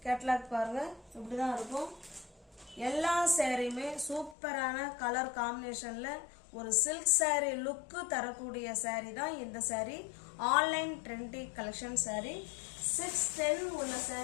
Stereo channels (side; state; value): right; drops out; at 4.4 s